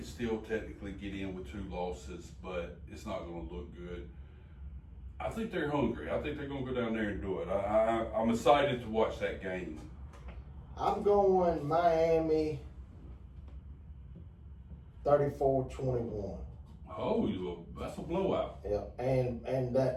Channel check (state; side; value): identical; both; correlation 1.00